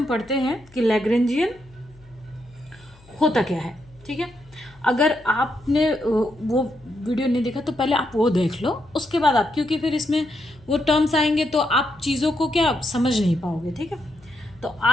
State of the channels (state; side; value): noise; left; hum, 27 dB below the sound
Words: पढ़ते हैं कि लैग्रेंजियन होता क्या है। ठीक है, अगर आपने वो वीडियो नहीं देखा तो पहले आप वो देख लो, उसके बाद आप, क्योंकि फिर इसमें वो टर्म्स आएंगे तो आप चीज़ों को क्या समझ नहीं पाओगे। ठीक है, तो